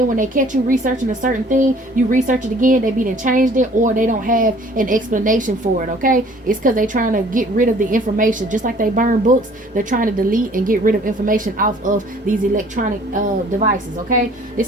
when they catch you researching a certain thing, you research it again, they be done changed it, or they don't have an explanation for it, okay? It's because they're trying to get rid of the information. Just like they burn books, they're trying to delete and get rid of information off of these electronic devices, okay?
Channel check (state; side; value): normal; both; correlation 0.54